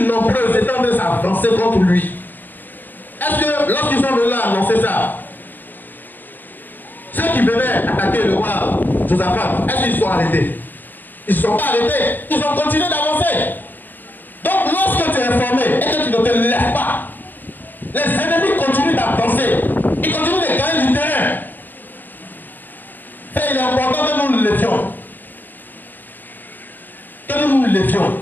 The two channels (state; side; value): late; right; 0.089 ms